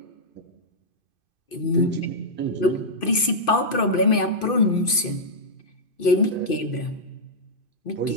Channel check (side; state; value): right; late; 2.5 ms